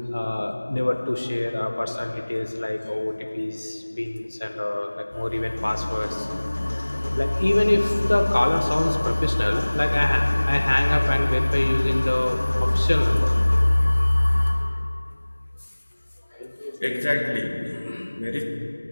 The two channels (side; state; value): both; inverted; correlation -1.00